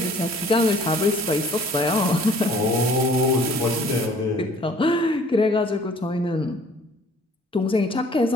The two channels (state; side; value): normal; both; correlation 0.54